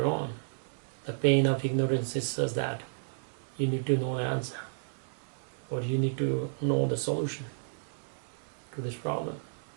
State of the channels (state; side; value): silent; left; digital silence